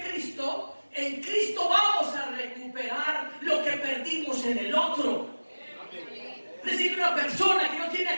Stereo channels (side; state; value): both; inverted; correlation -1.00